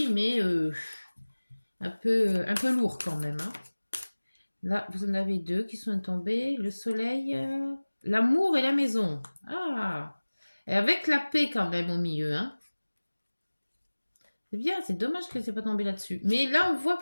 mais un peu lourd quand même. Hein. Là, vous en avez deux qui sont tombés. Le soleil, l'amour et la maison. Ah, et avec la paix quand même au milieu, hein. C'est bien, c'est dommage que c'est pas tombé là-dessus. Mais là, on voit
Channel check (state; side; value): inverted; both; correlation -1.00